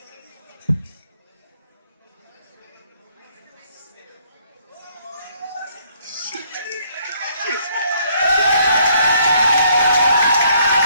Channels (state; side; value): inverted; both; correlation -0.67